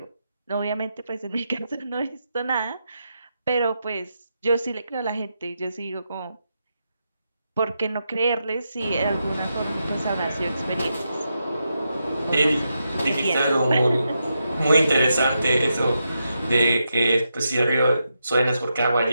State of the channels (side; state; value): both; inverted; correlation -0.85